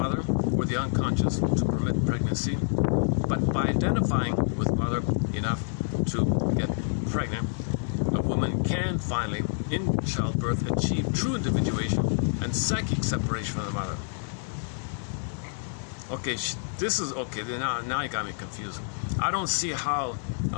or the unconscious to permit pregnancy, but by identifying with mother enough to get pregnant, a woman can finally, in childbirth, achieve true individuation and psychic separation from the mother. Okay, this is okay. Now you got me confused. I don't see how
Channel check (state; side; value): silent; right; digital silence